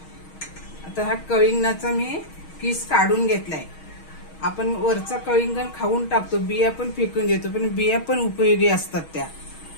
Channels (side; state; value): right; late; 6.3 ms